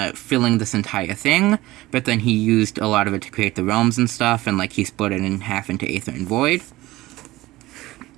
filling this entire thing, but then he used a lot of it to create the realms and stuff, and, like, he split it in half into Aether and Void.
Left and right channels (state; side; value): quieter; left; 18.1 dB